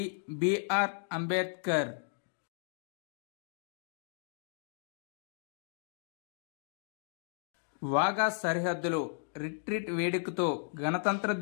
BR Ambedkar. Wagah సరిహద్దులో రిట్రీట్ వేడుకతో గణతంత్ర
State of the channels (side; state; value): right; silent; digital silence